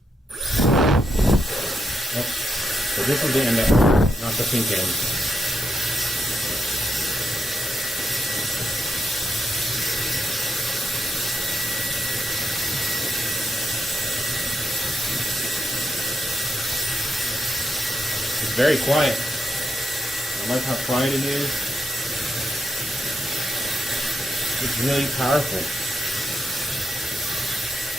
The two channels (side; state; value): both; normal; correlation 0.81